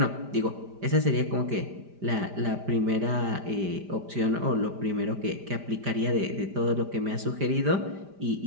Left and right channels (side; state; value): left; late; 5.0 ms